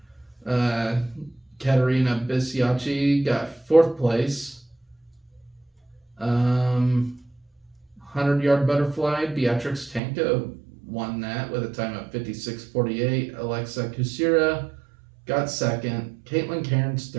Katerina Bisiacci got 4th place. 100-yard butterfly, Beatrix Tanko won that with a time of 56:48. Alexa Kusira got 2nd. Caitlin Cairns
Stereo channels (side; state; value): left; drops out; at 10.0 s